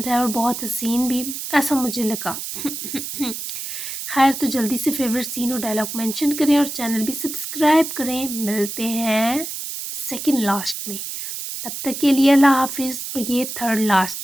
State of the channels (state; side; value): noise; right; hiss, 6 dB below the sound